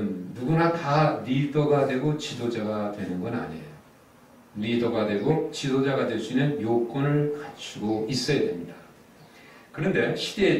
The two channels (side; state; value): both; identical; correlation 1.00